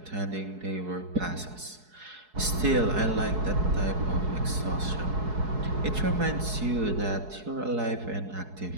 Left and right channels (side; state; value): left; late; 4.7 ms